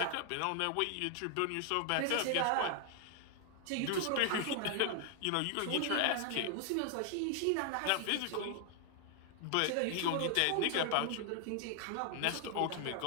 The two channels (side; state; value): both; different; correlation 0.00